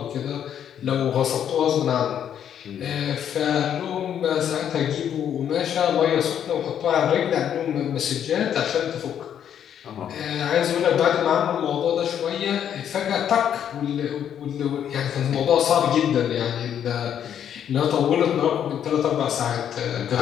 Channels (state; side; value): quieter; right; 9.3 dB